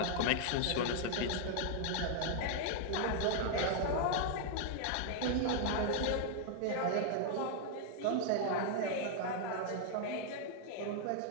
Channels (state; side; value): different; both; correlation 0.00